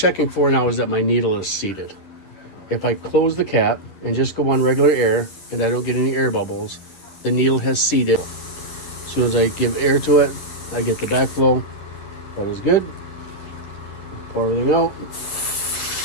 for now is that my needle is seated. If I close the cap and just go on regular air and I don't get any air bubbles, the needle has seated. As soon as I give air to it, I get the backflow. That is good. Pour everything out.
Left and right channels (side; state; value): right; late; 11 ms